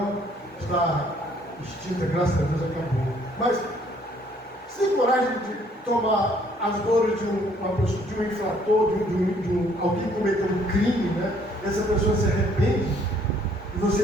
está extinta, graças a Deus acabou. Mas você tem coragem de tomar as dores de uma pessoa, de um infrator, de alguém que cometeu um crime, né? essa pessoa se arrepende, e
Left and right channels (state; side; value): normal; both; correlation 0.63